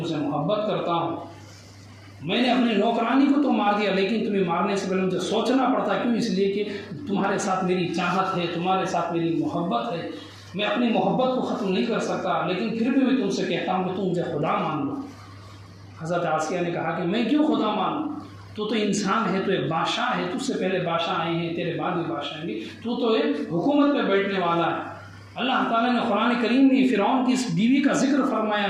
سے محبت کرتا ہوں، میں نے اپنے نوکرانی کو تو مار دیا لیکن تمہیں مارنے سے پہلے مجھے سوچنا پڑتا، کیوں؟ اس لیے کہ تمہارے ساتھ میری چاہت ہے، تمہارے ساتھ میری محبت ہے، میں اپنی محبت کو ختم نہیں کر سکتا، لیکن پھر بھی میں تم سے کہتا ہوں کہ تم مجھے خدا مان لو۔ حضرت عاصیہ نے کہا کہ میں کیوں خدا مانوں؟ تو انسان ہے، تو ایک بادشاہ ہے، تجھ سے پہلے بادشاہ آئے ہیں، تیرے بعد بھی بادشاہ آئیں گے، تو ایک حکومت پہ بیٹھنے والا ہے۔ اللہ تعالیٰ نے قرآن کریم میں فرعون کی اس بیوی کا ذکر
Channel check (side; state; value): both; identical; correlation 1.00